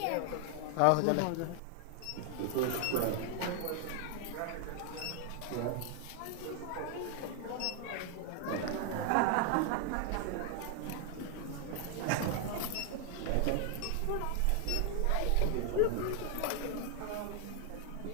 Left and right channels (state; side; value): different; both; correlation 0.01